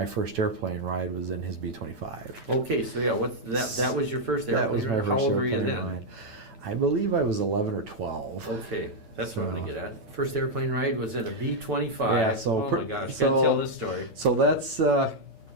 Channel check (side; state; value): left; late; 9.0 ms